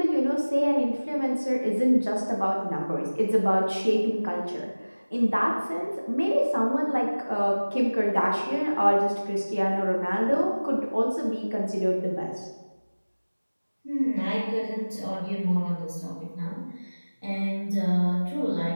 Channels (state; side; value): inverted; both; correlation -1.00